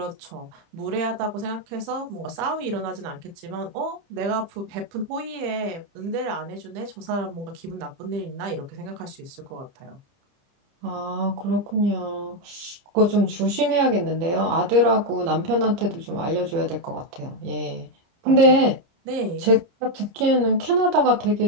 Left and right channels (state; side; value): late; left; 30 ms